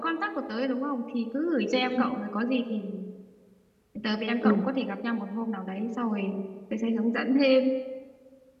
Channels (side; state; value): both; identical; correlation 1.00